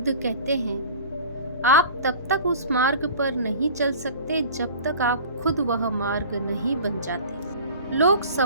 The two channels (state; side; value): inverted; both; correlation -0.42